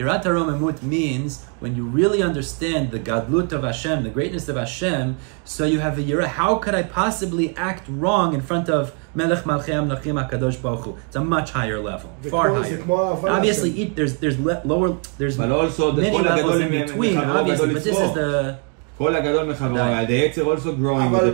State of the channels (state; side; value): quieter; left; 38.7 dB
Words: haromemut means when you really understand the gadlut of Hashem, the greatness of Hashem, so you have a yir'ah. How could I possibly act wrong in front of Melech Malchei Amlachim HaKadosh Baruch Hu? It's a much higher level, far higher. Obviously, there's lower, there's many levels in between, obviously, but this is the... כל הגדול מחברו, the Yetzer also growing with the